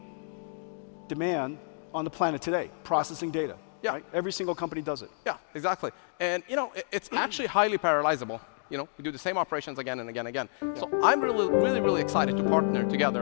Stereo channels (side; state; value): right; silent; digital silence